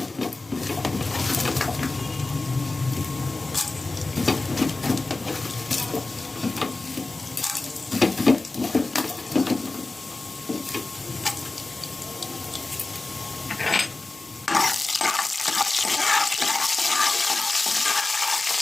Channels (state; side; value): quieter; right; 3.2 dB